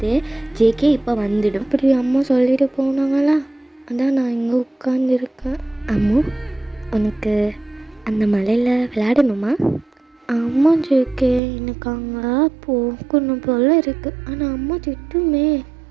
ஜேகே இப்போ வந்துடும். இப்படி அம்மா சொல்லிட்டு போனாங்களா, அதான் நான் இங்கே உட்காந்துருக்கேன். அம்மு உனக்கு அந்த மலையில் விளையாடணுமா? அம்மா ஜேகே எனக்கு அங்கே போகணும் போல் இருக்குது, ஆனால் அம்மா திட்டுமே.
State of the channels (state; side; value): drops out; left; at 11.4 s